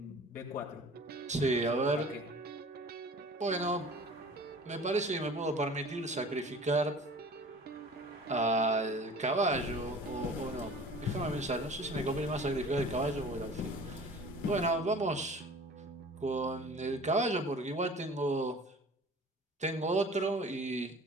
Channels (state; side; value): normal; both; correlation 0.44